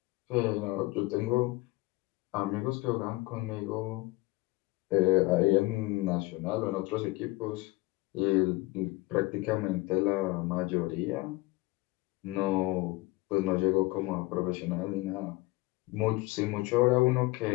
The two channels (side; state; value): right; quieter; 21.2 dB